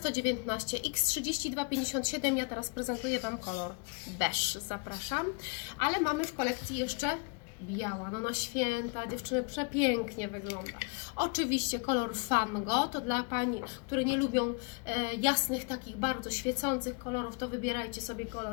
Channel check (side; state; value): right; quieter; 35.4 dB